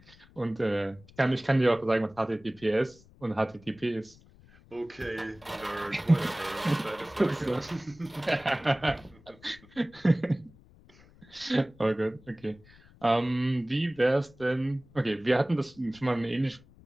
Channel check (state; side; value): noise; left; rumble, 26 dB below the sound